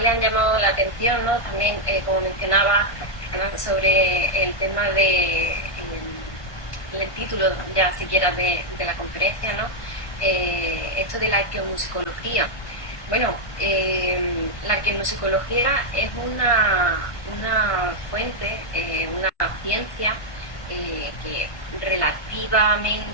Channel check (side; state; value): right; late; 1.5 ms